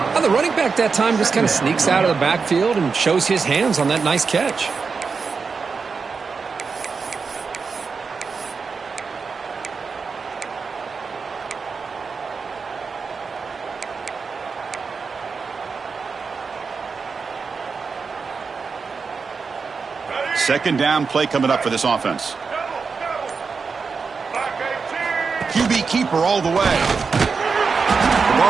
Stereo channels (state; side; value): quieter; left; 5.1 dB